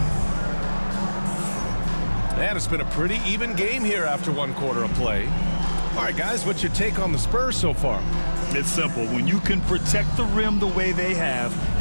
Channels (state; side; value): inverted; both; correlation -1.00